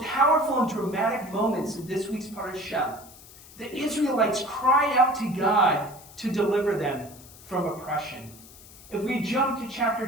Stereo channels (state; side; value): noise; left; hiss, 20 dB below the sound